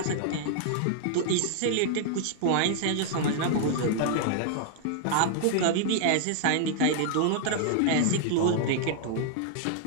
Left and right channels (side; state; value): both; different; correlation -0.01